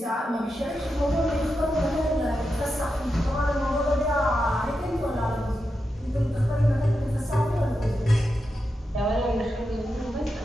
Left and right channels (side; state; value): both; normal; correlation 0.88